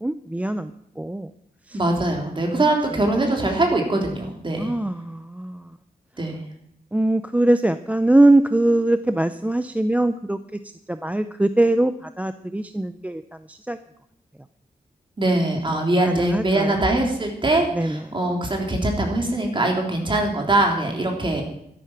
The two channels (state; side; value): normal; both; correlation 0.82